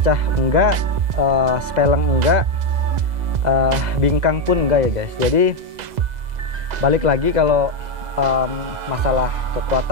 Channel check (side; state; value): left; late; 2.0 ms